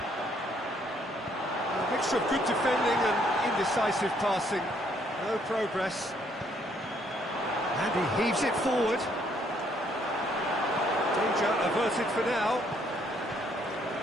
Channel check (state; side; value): normal; both; correlation 0.68